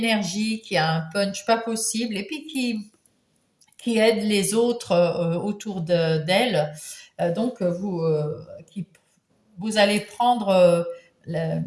qui a un punch pas possible, et puis qui aide les autres autour d'elle. Donc, vous allez prendre, la-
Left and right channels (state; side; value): identical; both; correlation 1.00